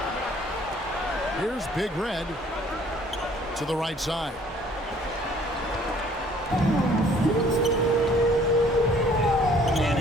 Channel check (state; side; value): normal; both; correlation 0.57